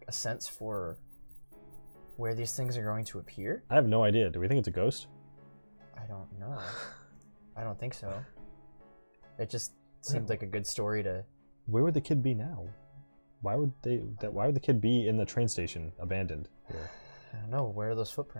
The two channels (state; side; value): inverted; both; correlation -1.00